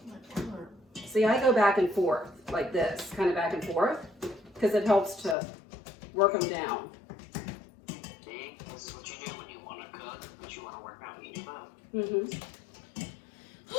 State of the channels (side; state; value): right; drops out; at 5.4 s